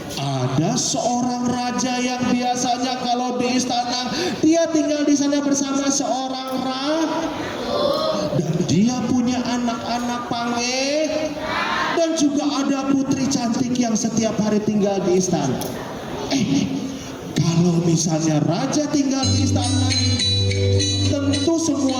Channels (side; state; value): both; identical; correlation 1.00